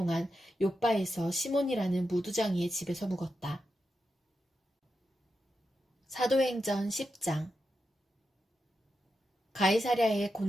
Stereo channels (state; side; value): normal; both; correlation 0.87